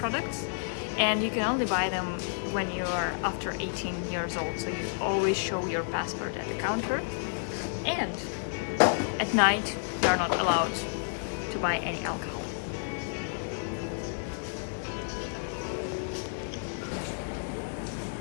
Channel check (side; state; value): right; silent; digital silence